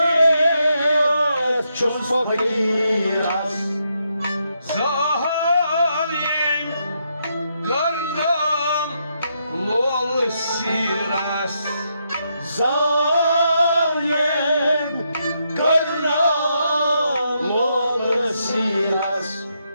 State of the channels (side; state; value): both; inverted; correlation -0.79